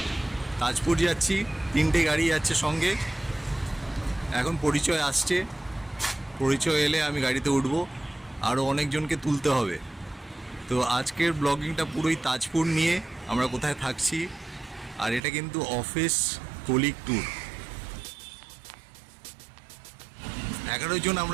তাজপুর যাচ্ছি, 3টে গাড়ি যাচ্ছে সঙ্গে। এখন পরিচয় আসছে, পরিচয় এলে আমি গাড়িতে উঠবো, আরও অনেকজনকে তুলতে হবে। তো আজকের ব্লগিংটা পুরোই তাজপুর নিয়ে, আমরা কোথায় থাকছি। আর এটা কিন্তু অফিস কলিগ ট্যুর। 11 জন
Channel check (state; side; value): drops out; left; at 15.2 s